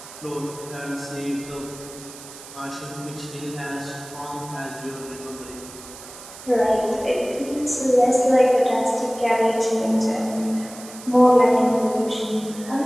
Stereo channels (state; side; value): noise; right; hiss, 16 dB below the sound